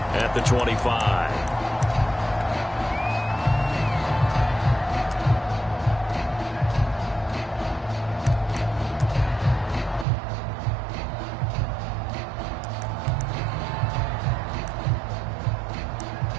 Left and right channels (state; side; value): drops out; left; at 10.1 s